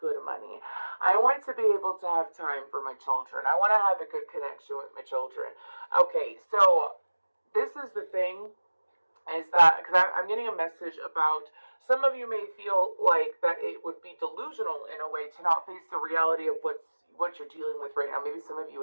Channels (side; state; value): both; inverted; correlation -1.00